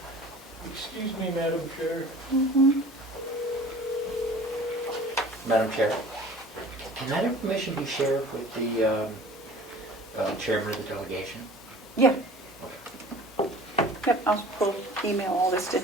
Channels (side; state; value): both; normal; correlation 0.45